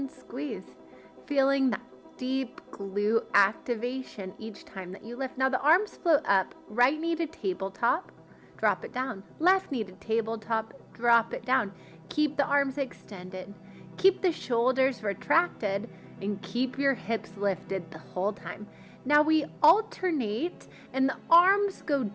squeeze. Feeling that deep glute activation each time that you lift. Now the arms float up, right knee to tabletop, drop it down. Left knee to tabletop, drop it down. Keep the arms extended. Keep the shoulders retracted and keep your hips lifted the whole time. Now we alternate and the arms go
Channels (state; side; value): identical; both; correlation 1.00